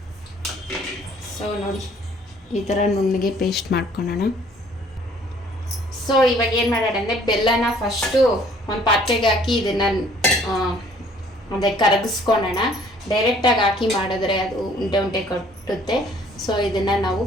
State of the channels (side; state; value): both; normal; correlation 0.58